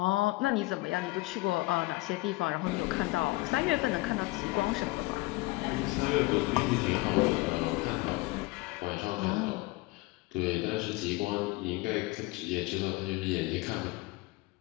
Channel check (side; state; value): right; quieter; 21.8 dB